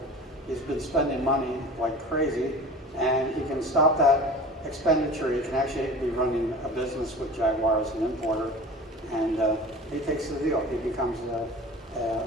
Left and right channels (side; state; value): both; normal; correlation 0.37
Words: He's been spending money like crazy, and he can stop that expenditure. He can actually be running a business with Jaguar as an importer, and he takes the deal. He becomes a